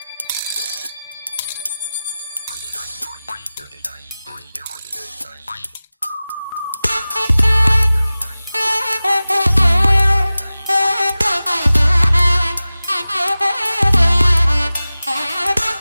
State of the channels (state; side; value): inverted; both; correlation -0.97